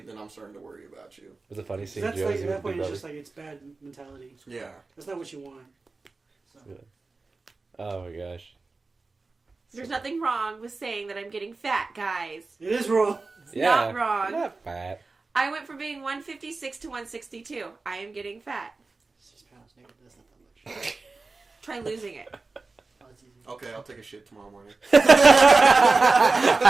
then I'm starting to worry about you. It was a funny scene. That's Joe, like, was at with that point, Big it's Brother. just like, it's bad mentality. Yeah. That's not what you want. So. Oh my gosh. There's nothing wrong with saying that I'm getting fat, guys. It is wrong. It's Yeah. not wrong. Not fat. I went from being 156 to 162. I am getting fat. 6 pounds, nigga. That's not that much. Try losing it. Oh, it's easy. Okay, I'll take a shit tomorrow morning.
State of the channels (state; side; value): quieter; left; 3.7 dB